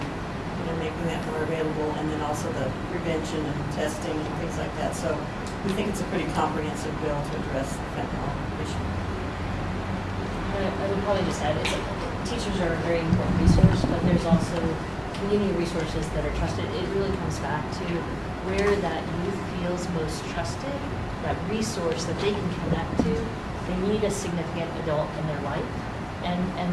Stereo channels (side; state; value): both; identical; correlation 1.00